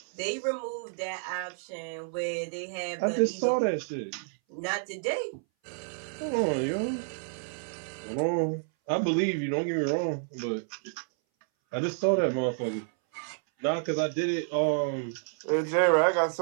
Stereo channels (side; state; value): left; silent; 58 dB below the other